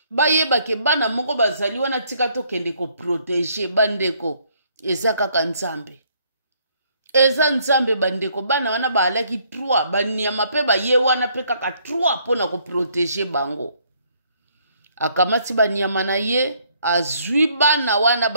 bayebake bana moko bazali wana tika tokende koprotege bandeko eza kaka nzambe. Eza nzambe bandeko bana wana baalaki 3 banyama pe baye wana pe kaka 3 pona koprotege bango. Akamati banyama na ye azwi bana wana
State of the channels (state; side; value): inverted; both; correlation -0.67